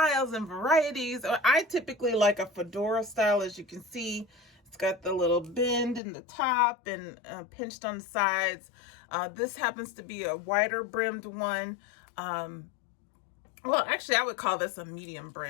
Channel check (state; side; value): drops out; right; at 6.0 s